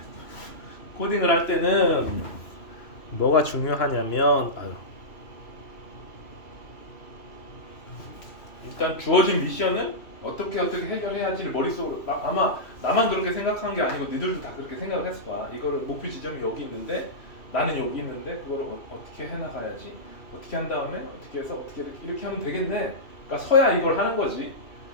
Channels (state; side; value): late; right; 2.8 ms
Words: 코딩을 할 때는 뭐가 중요하냐면 일단 주어진 미션은 어떻게 해결해야지를 머릿속으로 아마 나만 그렇게 생각한 게 아니고 니들도 다 그렇게 생각을 했을 거야. 이거를 목표 지점이 여기 있는데 나는 여기 있는데 그걸 어떻게 해나가야지. 어떻게 한 다음에 어떻게 해서 어떻게 이렇게 하면 되겠네. 그러니까 서야 이걸 하는 거지.